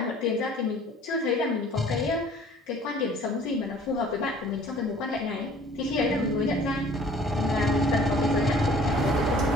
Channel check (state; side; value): normal; both; correlation 0.52